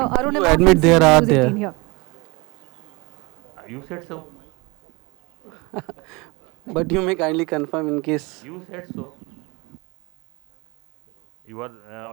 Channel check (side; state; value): left; quieter; 26.2 dB